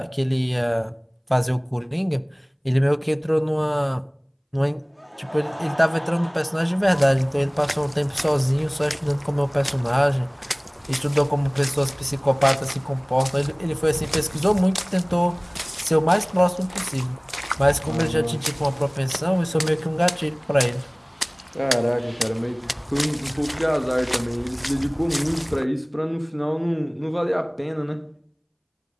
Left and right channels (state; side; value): identical; both; correlation 1.00